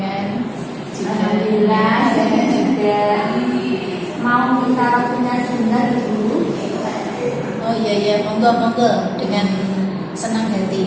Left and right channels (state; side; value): identical; both; correlation 1.00